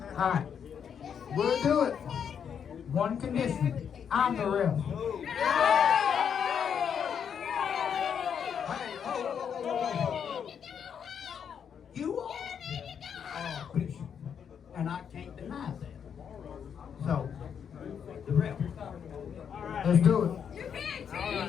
All right, we'll do it. One condition: I'm the ref. You are Bishop, and I can't deny that. So, the ref. Let's do it. You can't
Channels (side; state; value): right; quieter; 7.7 dB